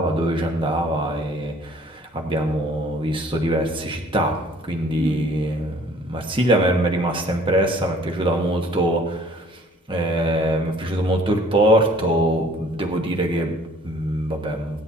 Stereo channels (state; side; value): normal; both; correlation 0.55